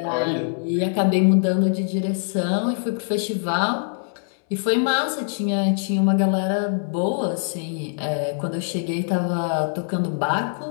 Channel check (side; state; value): right; silent; 63 dB below the other